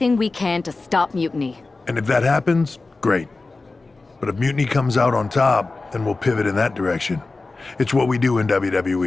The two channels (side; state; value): right; quieter; 3.5 dB